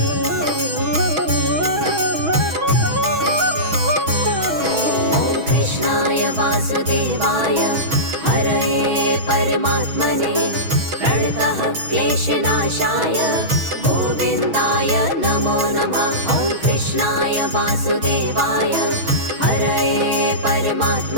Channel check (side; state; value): left; late; 6.2 ms